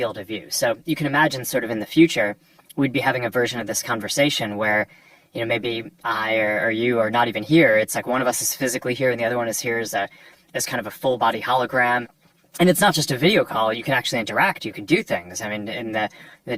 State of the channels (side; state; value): both; identical; correlation 1.00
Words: of view. So you can imagine sort of in the future, we'd be having a version of this conversation where, you know, maybe I or you are not even here. It's like one of us is physically here and the other one is here as kind of a full body hologram. And it's not just a video call. You can actually interact. You can do things. I mean, in the